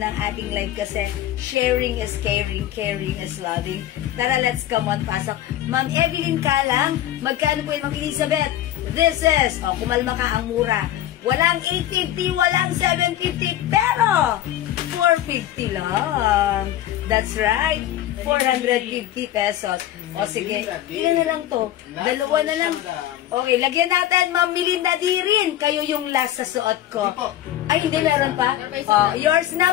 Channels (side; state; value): right; quieter; 12.8 dB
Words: ating live kasi sharing is caring, caring is loving. Tara, let's come on. Pasok. Ma'am Evelyn Kalang, magkano po yung Ma'am Elizabeth? This is, kumalma ka, ang mura. Walang 850, walang 750, pero 450 lang. That's right. 450 pesos. O sige, ilan na lang to? Dalawa na lang. Okay, lagyan natin, Ma'am Melinda di rin. Kayo yung last sa suot ko. Ay, hindi, meron pa? Yours